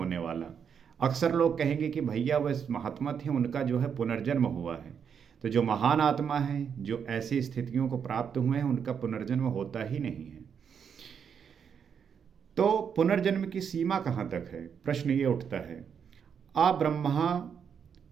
वाला। अक्सर लोग कहेंगे कि भैया वह महात्मा थे, उनका जो है पुनर्जन्म हुआ है। तो जो महान आत्मा है, जो ऐसी स्थितियों को प्राप्त हुए हैं, उनका पुनर्जन्म होता ही नहीं है। तो पुनर्जन्म की सीमा कहाँ तक है, प्रश्न ये उठता है। आ ब्रह्मा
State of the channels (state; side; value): quieter; left; 7.3 dB